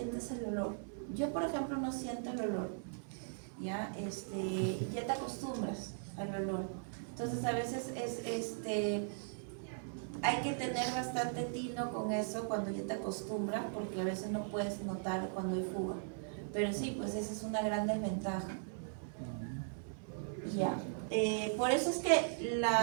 el olor. Yo, por ejemplo, no siento el olor. Ya te acostumbras al olor. Entonces a veces hay que tener bastante tino con eso cuando ya te acostumbras, porque a veces no puedes notar cuando hay fuga. Pero sí, pues esa es una gran desventaja. Ya. Por eso es que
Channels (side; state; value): left; silent; digital silence